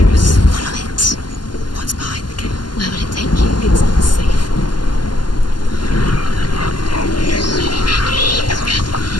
Follow it. What's behind the gate? Where will it take you? It's unsafe.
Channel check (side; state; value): right; late; 0.71 ms